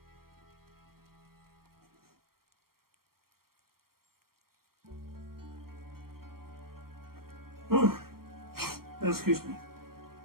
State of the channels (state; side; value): late; left; 0.93 ms